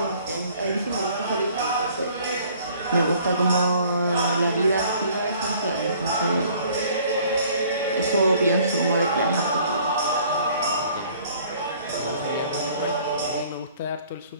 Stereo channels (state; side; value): inverted; both; correlation -0.56